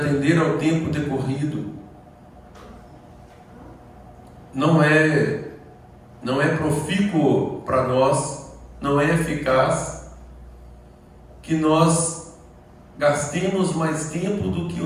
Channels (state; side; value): identical; both; correlation 1.00